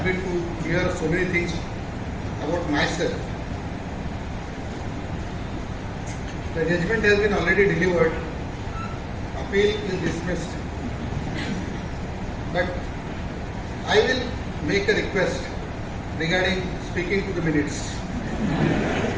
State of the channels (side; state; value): both; identical; correlation 1.00